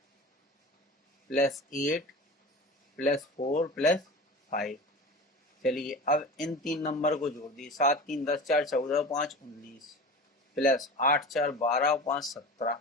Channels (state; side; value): normal; both; correlation 0.33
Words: + 8 + 4 + 5। चलिए अब इन तीन नंबर को जोड़ दिए, 7 3 10 4 14 5 19 + 8 4 12 और 5 17,